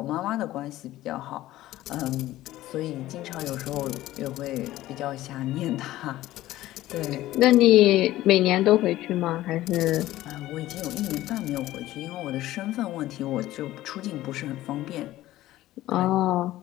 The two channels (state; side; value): quieter; right; 15.5 dB